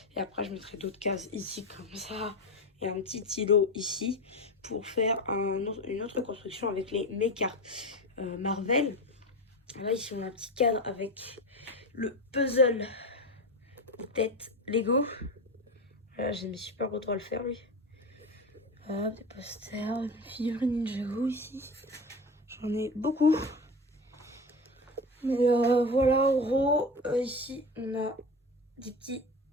Et après, je mettrai d'autres cases ici comme ça. Et un petit îlot ici pour faire une autre construction avec mes cartes Marvel. Là, ici, on a un petit cadre avec le puzzle de tête Lego. Là, j'ai mis super beau droit à le faire, lui. Des posters, des figurines Ninjago ici. J'en ai beaucoup. Mais voilà, en gros, ici, on a des petits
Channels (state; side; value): normal; both; correlation 0.24